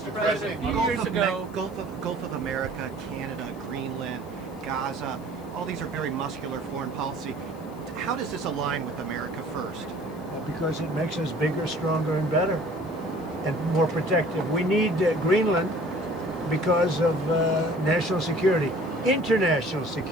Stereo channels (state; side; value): noise; left; hiss, 27 dB below the sound